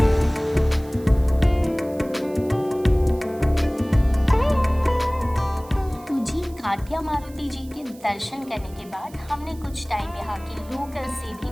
Katiya Maruti ji के दर्शन करने के बाद हमने कुछ टाइम यहाँ के लोकल से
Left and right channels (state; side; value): noise; right; hiss, 24 dB below the sound